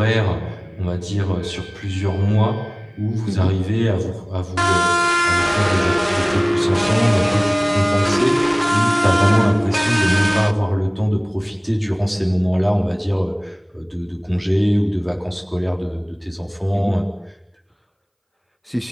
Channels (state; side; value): identical; both; correlation 1.00